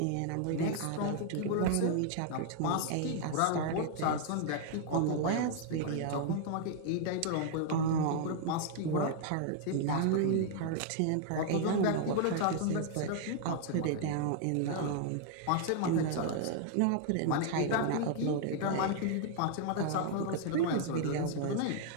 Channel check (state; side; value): different; both; correlation 0.00